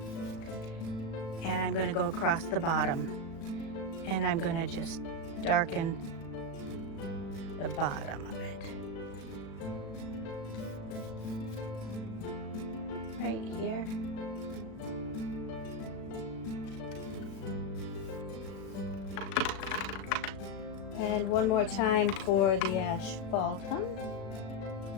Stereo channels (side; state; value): right; late; 36 ms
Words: And I'm going to go across the bottom. And I'm going to just darken the bottom of it. Right here. And one more time for the asphaltum.